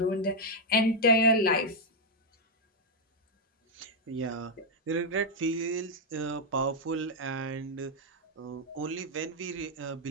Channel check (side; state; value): both; normal; correlation -0.01